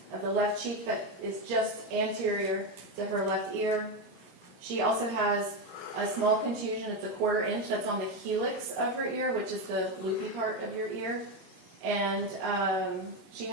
of the left cheek that is just anterior to her left ear. She also has a small contusion, it's a 1/4 inch, that's on the helix of her ear, which is the loopy part of your ear. And she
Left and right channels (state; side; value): normal; both; correlation 0.11